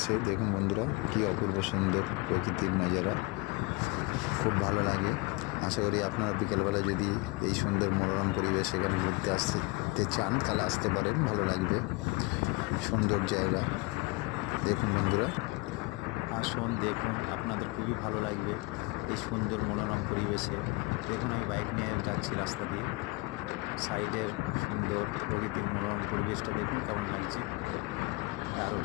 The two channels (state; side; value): quieter; right; 24.7 dB